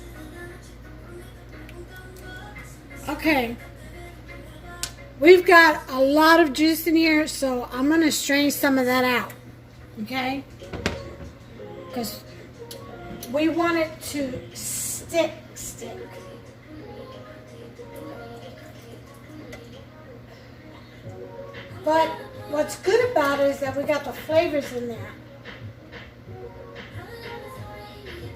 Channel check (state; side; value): identical; both; correlation 1.00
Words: Okay, we've got a lot of juice in here, so I'm gonna strain some of that out, okay? Because we want it to stick. But what's good about it is that we got the flavors in there.